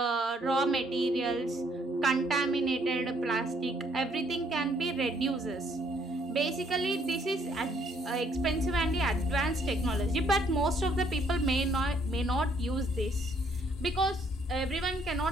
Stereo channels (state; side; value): normal; both; correlation 0.66